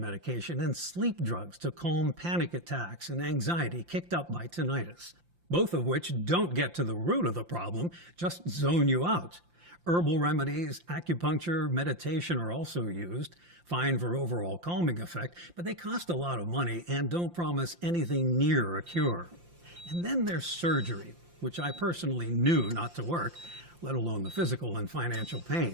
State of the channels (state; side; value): late; left; 5.8 ms